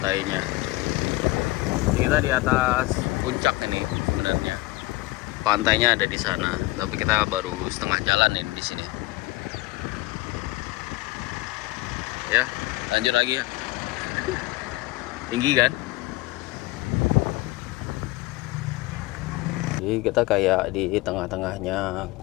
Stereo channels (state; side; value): quieter; right; 19.6 dB